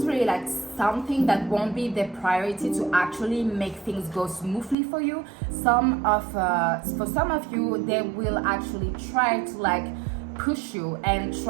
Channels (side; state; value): left; drops out; at 4.8 s